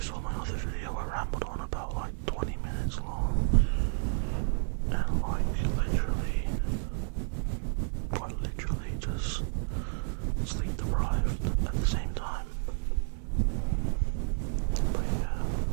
my other video, I rambled on about like 20 minutes long. And like quite literally just sleep deprived at the same time. But yeah,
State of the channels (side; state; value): left; silent; 57 dB below the other